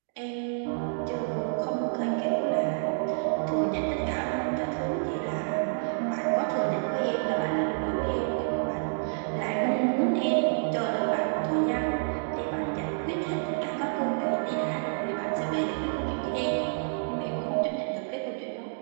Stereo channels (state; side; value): silent; left; digital silence